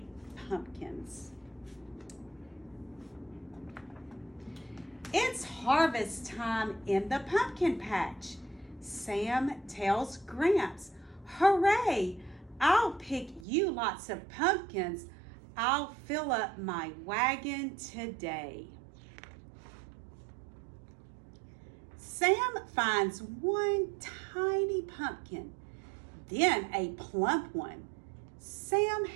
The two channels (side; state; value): left; drops out; at 13.5 s